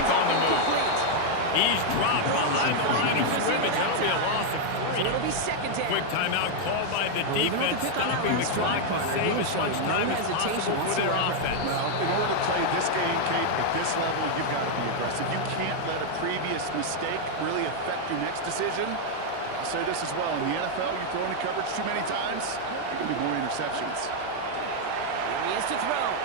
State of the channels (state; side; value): different; both; correlation 0.00